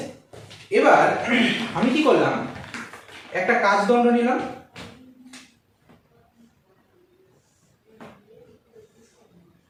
এবার আমি কি করলাম, একটা কাচদণ্ড নিলাম,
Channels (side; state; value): both; identical; correlation 1.00